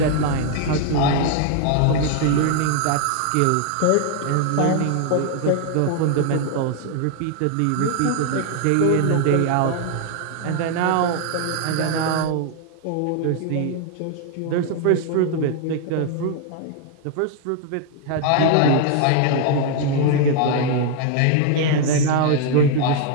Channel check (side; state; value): both; different; correlation 0.00